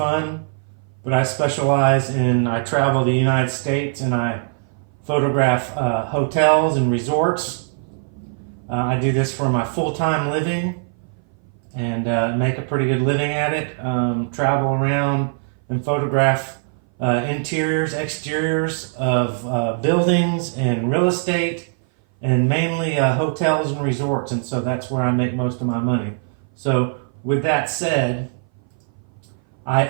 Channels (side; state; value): left; silent; 59 dB below the other